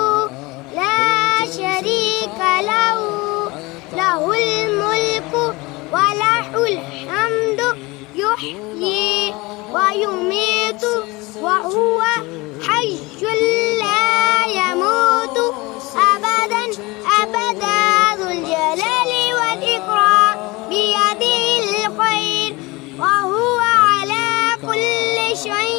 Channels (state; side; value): quieter; right; 23.3 dB